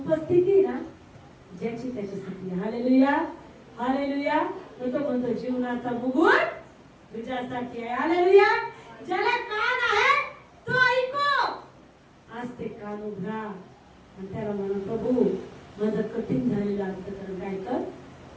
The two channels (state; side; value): identical; both; correlation 1.00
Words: आहे ना, ज्याची त्याच्यासाठी. Hallelujah, hallelujah. तो म्हणतो जीवनाचा मुकुट तुझ्यासाठी आहे. हालेलुया. ज्याला कान आहे तो ऐको. आज ते कान उघडा आणि त्याला म्हणा, प्रभू माझं कठीण झालेलं अंतःकरण काय कर.